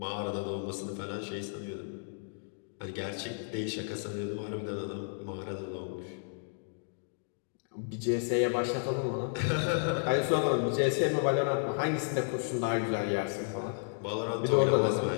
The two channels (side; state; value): right; silent; digital silence